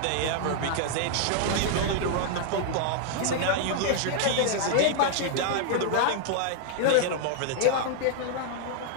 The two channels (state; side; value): different; both; correlation -0.01